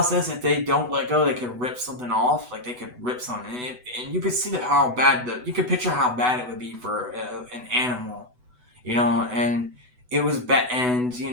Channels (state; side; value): late; left; 8.0 ms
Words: if they don't let go, they could rip something off. Like they could rip something, and you could see how bad you could picture how bad it would be for an animal, and it was bad, and